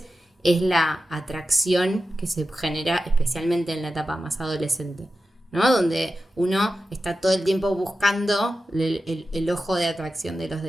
es la atracción que se genera especialmente en la etapa más adolescente, ¿no? Donde uno está todo el tiempo buscando el ojo de atracción de los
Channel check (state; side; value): normal; both; correlation 0.92